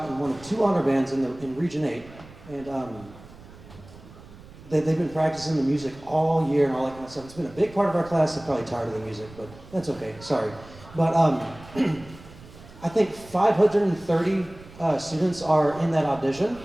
in one of 2 honor bands in Region 8. And they've been practicing the music all year and all that kind of stuff. It's been a big part of our class. They're probably tired of the music, but that's okay. Sorry. But I think 530 students are in that audition.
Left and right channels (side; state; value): right; noise; rumble, 20 dB below the sound